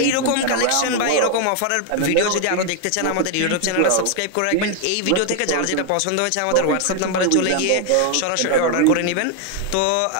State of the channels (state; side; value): different; both; correlation 0.00